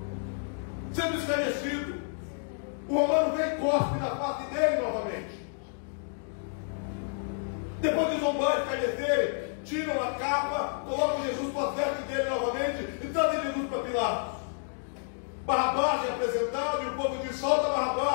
Sendo esclarecido, o romano vem e cospe na face dele novamente. Depois de zombar e escarnecer, tiram a capa, colocam Jesus para as vestes dele novamente e trazem Jesus para Pilatos. Barrabás é apresentado e o povo diz: solta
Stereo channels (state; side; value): silent; right; digital silence